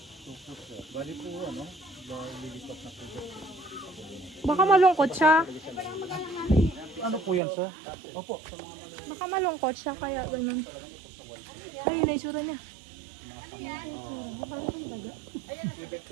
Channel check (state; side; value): drops out; left; at 7.4 s